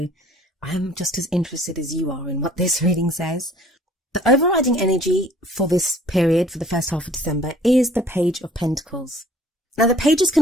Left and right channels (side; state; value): both; normal; correlation 0.55